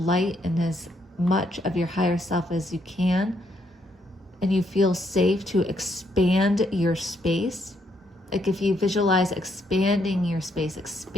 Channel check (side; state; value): both; normal; correlation 0.74